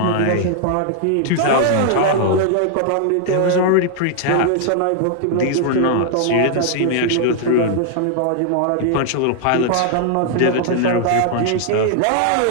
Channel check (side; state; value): both; different; correlation 0.00